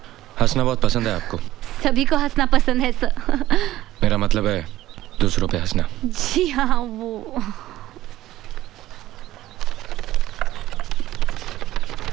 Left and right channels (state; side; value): quieter; left; 15.0 dB